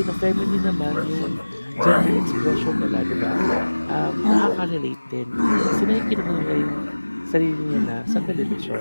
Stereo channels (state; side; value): inverted; both; correlation -1.00